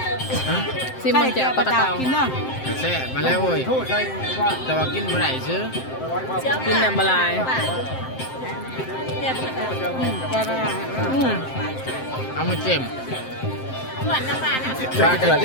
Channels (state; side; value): late; right; 7.7 ms